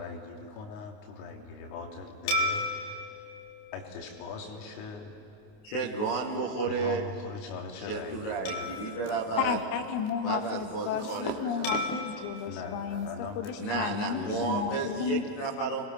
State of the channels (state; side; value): late; right; 28 ms